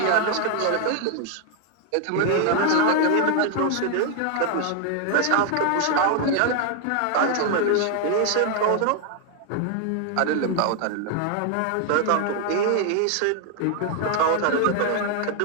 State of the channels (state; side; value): different; both; correlation 0.00